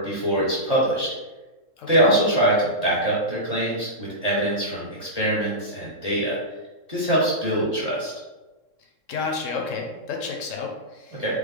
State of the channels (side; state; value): right; late; 3.7 ms